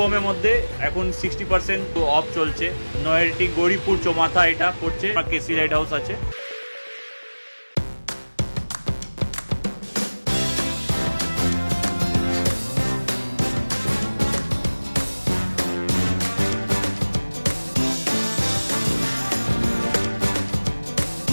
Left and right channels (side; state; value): both; inverted; correlation -1.00